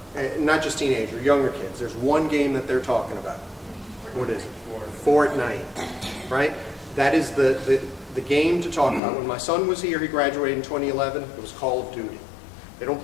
not just teenager, younger kids, there's one game that they're talking about. What is it? Fortnite, right? That is the game to talk about. When my son was here, he graduated in 2011, it was Call of Duty. They don't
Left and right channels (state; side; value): drops out; right; at 9.0 s